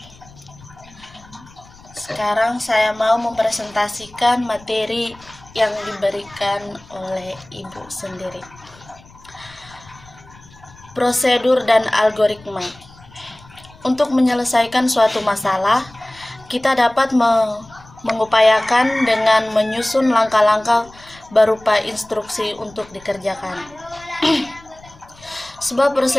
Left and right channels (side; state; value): left; noise; rumble, 24 dB below the sound